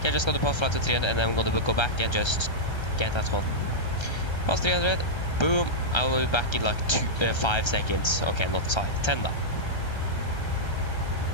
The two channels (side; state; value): right; late; 1.3 ms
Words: just got to pass flight to 300 and then I'm going to go back and just get that one. Pass 300. Boom. I will be back in like 5 seconds. Okay, not 5. 10 now.